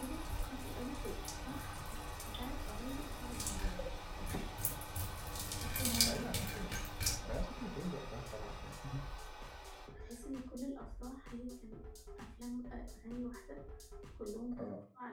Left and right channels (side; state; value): both; identical; correlation 1.00